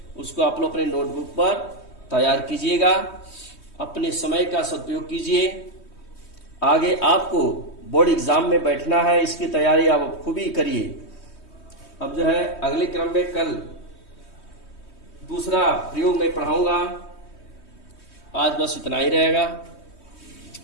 उसको आप लोग अपने नोटबुक पर तैयार कीजिएगा। अपने समय का सदुपयोग कीजिए। आगे आपको बोर्ड एग्जाम में बैठना है, इसकी तैयारी आप खूब ही करिए। अब जो है अगले क्रम में कल दूसरा प्रयोग में पढ़ाऊंगा। आज बस इतना ही रहेगा।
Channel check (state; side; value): late; right; 3.2 ms